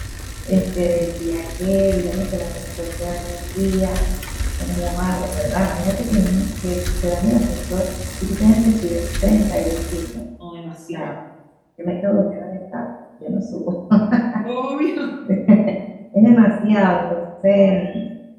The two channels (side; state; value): both; identical; correlation 1.00